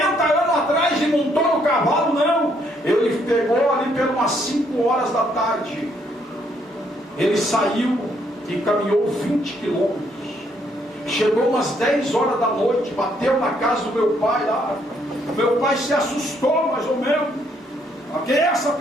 anos atrás, e montou no cavalo? Não, ele pegou ali pelas 5 horas da tarde, ele saiu e caminhou 20 quilômetros, chegou umas 10 horas da noite, bateu na casa do meu pai lá. Meu pai se assustou mais ou menos: quem é essa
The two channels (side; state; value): both; normal; correlation 0.70